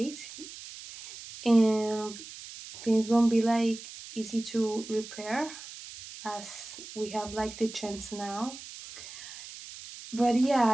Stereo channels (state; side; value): noise; right; hiss, 14 dB below the sound